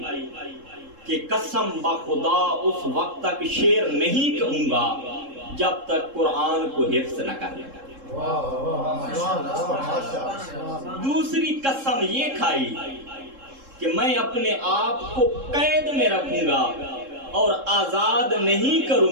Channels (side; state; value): left; late; 3.7 ms